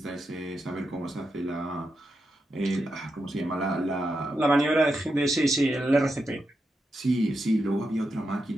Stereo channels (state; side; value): normal; both; correlation 0.86